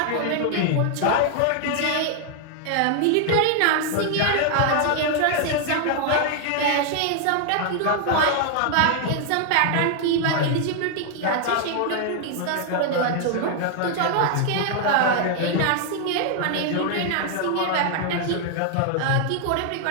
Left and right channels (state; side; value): different; both; correlation 0.00